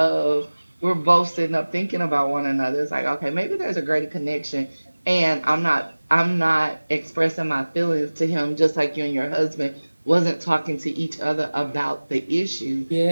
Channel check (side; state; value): both; inverted; correlation -1.00